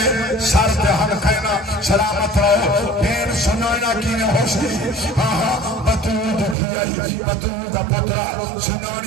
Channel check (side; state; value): left; drops out; at 6.6 s